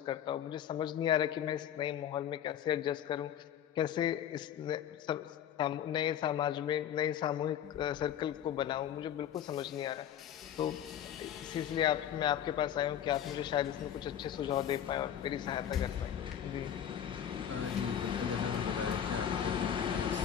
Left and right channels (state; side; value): quieter; right; 9.8 dB